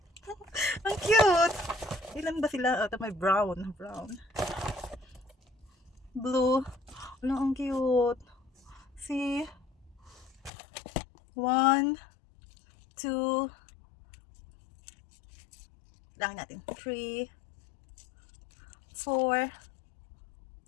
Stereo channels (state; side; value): drops out; right; at 10.5 s